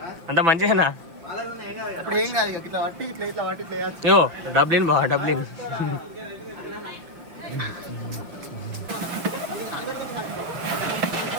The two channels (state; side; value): late; left; 6.0 ms